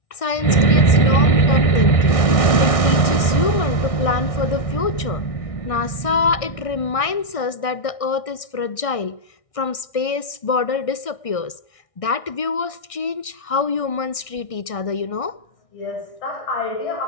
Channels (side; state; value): right; late; 1.6 ms